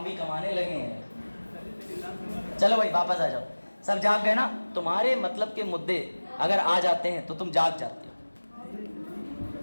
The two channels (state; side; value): inverted; both; correlation -1.00